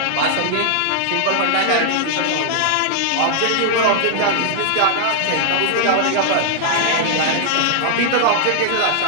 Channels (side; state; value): both; different; correlation 0.00